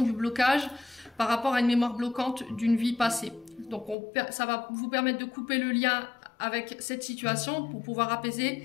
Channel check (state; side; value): drops out; right; at 4.0 s